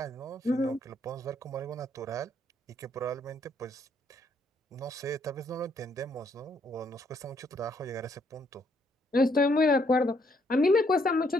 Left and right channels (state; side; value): normal; both; correlation 0.70